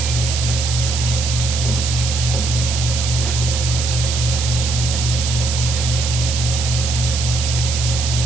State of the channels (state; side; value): noise; right; hiss, 4 dB below the sound